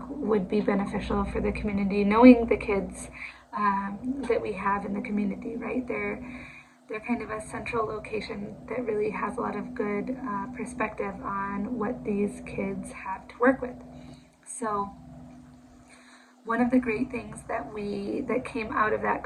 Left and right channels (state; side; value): identical; both; correlation 1.00